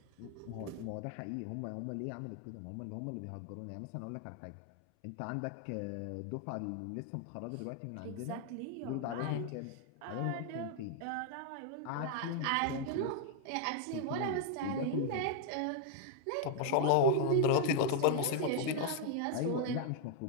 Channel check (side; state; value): both; different; correlation 0.00